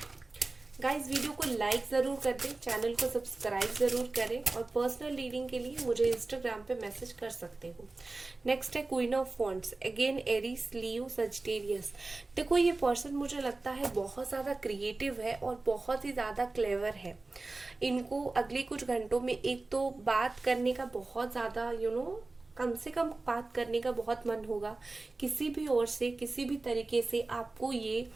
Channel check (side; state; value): left; quieter; 3.3 dB